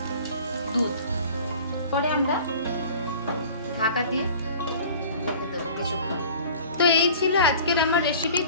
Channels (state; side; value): inverted; both; correlation -0.45